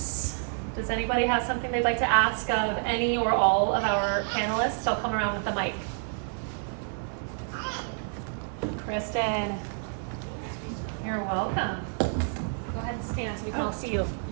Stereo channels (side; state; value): left; silent; 55 dB below the other